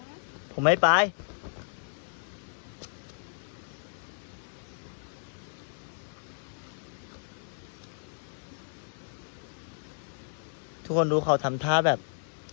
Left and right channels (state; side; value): silent; right; digital silence